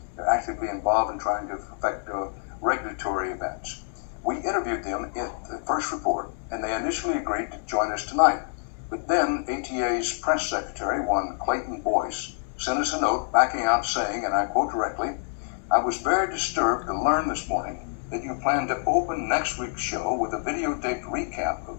They're actively involved in trying to affect regulatory events. We interviewed them in the first report, and they initially agreed to join us tonight. But then ATA's press secretary, one Clayton Boyce, sent us a note backing out saying, and I quote directly, "I was very disturbed to learn this morning that you plan to open next week's show with a videotaped recap of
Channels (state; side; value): silent; right; digital silence